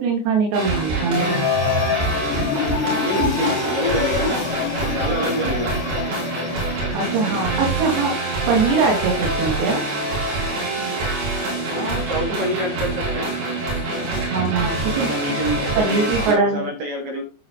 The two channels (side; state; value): left; late; 14 ms